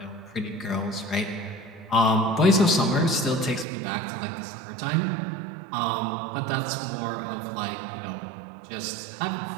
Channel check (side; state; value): left; drops out; at 3.7 s